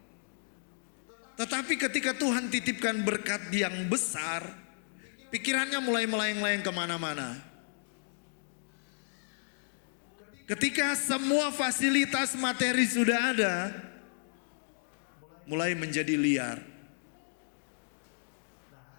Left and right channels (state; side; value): silent; right; digital silence